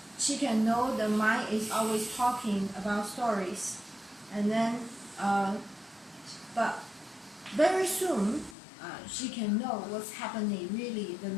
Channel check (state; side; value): drops out; right; at 8.6 s